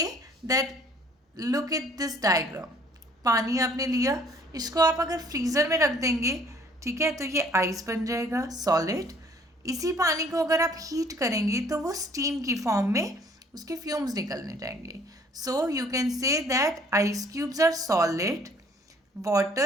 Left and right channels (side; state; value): both; normal; correlation 0.58